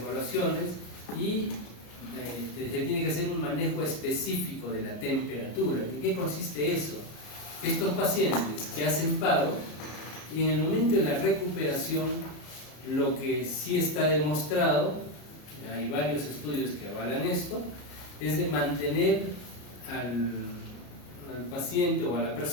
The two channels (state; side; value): late; right; 33 ms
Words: y se tiene que hacer un manejo específico de la temperatura. ¿En qué consiste eso? Estos pacientes que hacen paro, y en el momento de la recuperación, lo que sí está demostrado, hay varios estudios que avalan esto, es de mantener al paciente o a la